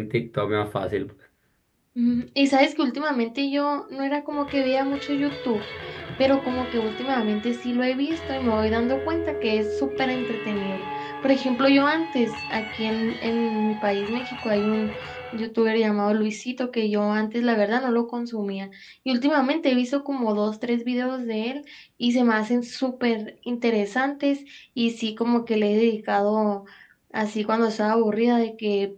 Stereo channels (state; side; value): identical; both; correlation 1.00